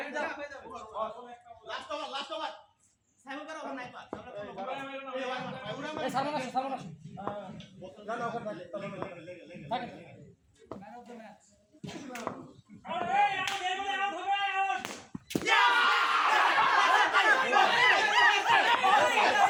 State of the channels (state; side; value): identical; both; correlation 1.00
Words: লাস্ট ওভার সাইমন করা ওভার নাই পাস এই সামনে আসো না না ওখানে থাকে থাকে আউট এই আউট এই বলে আউট হবে আউট আউট